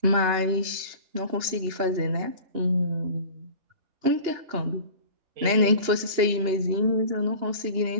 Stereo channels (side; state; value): left; late; 2.9 ms